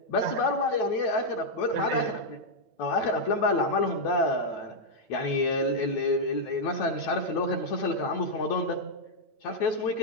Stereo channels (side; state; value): right; late; 8.9 ms